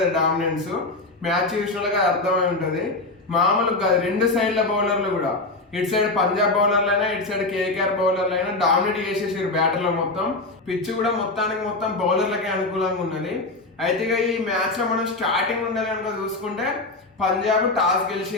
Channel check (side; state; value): right; quieter; 3.1 dB